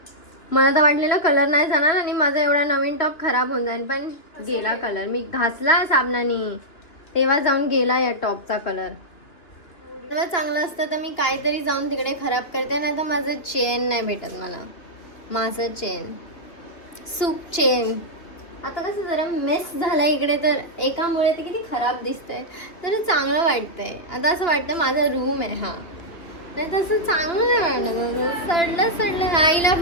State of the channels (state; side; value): late; right; 2.7 ms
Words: मला तर वाटलेलं कलर नाही जाणार आणि माझा एवढा नवीन टॉप खराब होऊन जाईल पण गेला कलर. मी घासला साबणाने तेव्हा जाऊन गेला या टॉपचा कलर. तेव्हा चांगलं असतं तर मी काहीतरी जाऊन तिकडे खराब करते नाही तर माझं चेन नाही भेटत मला. माझं चेन सूप चेन. आता कसं जरा मेस झालं इकडे, तर एकामुळे ते किती खराब दिसतंय, तर चांगलं वाटतंय. आता असं वाटतं माझा रूम आहे हा, नाही तसं चांगलं नाही वाटत. सडलं आईला